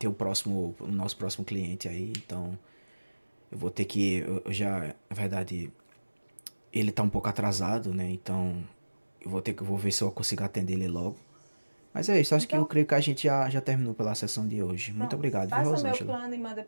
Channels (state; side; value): inverted; both; correlation -1.00